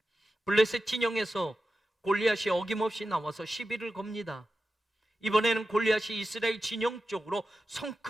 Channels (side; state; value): both; normal; correlation 0.92